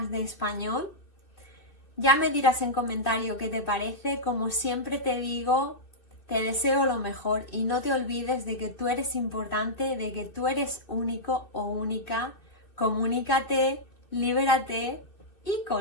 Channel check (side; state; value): right; late; 2.6 ms